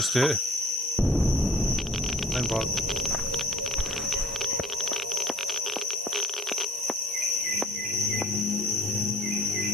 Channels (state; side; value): normal; both; correlation 0.50